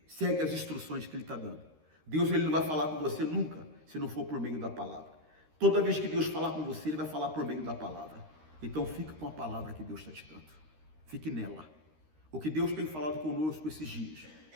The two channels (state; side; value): late; left; 13 ms